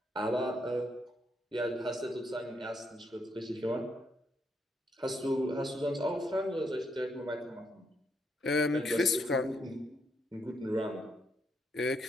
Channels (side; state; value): both; normal; correlation 0.77